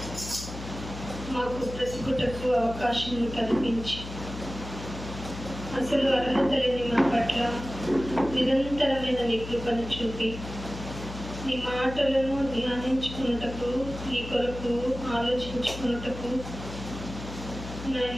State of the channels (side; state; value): left; noise; hum, 10 dB below the sound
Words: మాకు బ్రతుకుటకు అవకాశం కల్పించి, అసలు అర్హత లేని మా పట్ల నిరంతరమైన నీ కృపను చూపి, నీ మాటలను ధ్యానించుకున్నటకు, నీ కొరకు ఆలోచించుకున్నటకు,